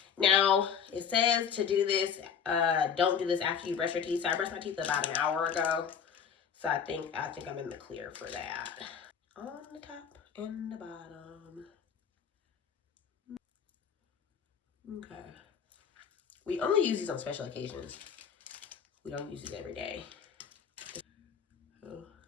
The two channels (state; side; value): quieter; right; 7.3 dB